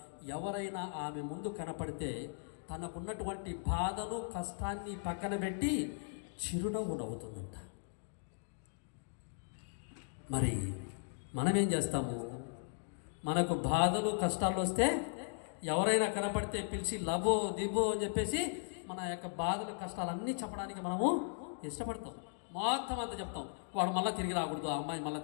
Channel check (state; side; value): silent; right; digital silence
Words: ఎవరైనా ఆమె ముందు కనపడితే తనకున్నటువంటి బాధను, కష్టాన్ని పక్కన పెట్టి చిరునవ్వు నవ్వుతుందంట. మరి మనమేం చేస్తాము? మనకు బాధలు, కష్టాలు వస్తే ఎవరైనా కనపడితే పిలిచి లబో దిబో అని చెప్పేసి మన యొక్క బాధలు, కష్టాలన్నీ చెప్పడానికి మనము ఇష్టపడతాం. మొత్తం అంతా చెప్తాం. వాడు మళ్ళీ తిరిగి రాకూడదు, అమ్మాయి మళ్ళీ